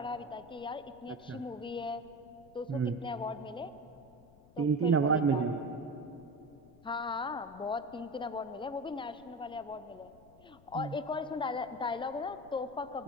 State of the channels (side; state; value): left; noise; rumble, 24 dB below the sound